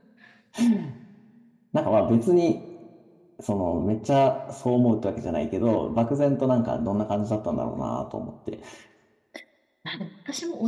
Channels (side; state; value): both; identical; correlation 1.00